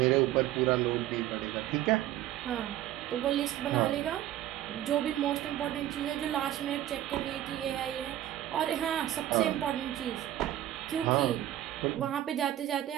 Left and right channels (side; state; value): left; quieter; 13.1 dB